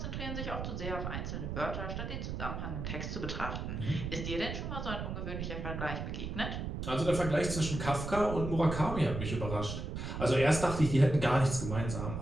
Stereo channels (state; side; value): noise; right; rumble, 5 dB below the sound